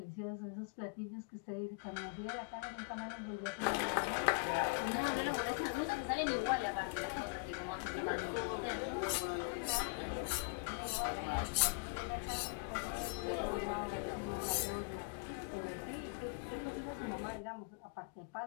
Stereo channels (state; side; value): quieter; right; 30.7 dB